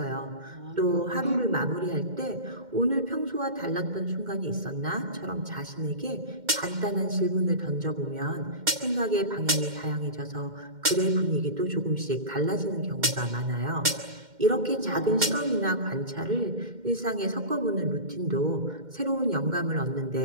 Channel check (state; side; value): late; left; 2.1 ms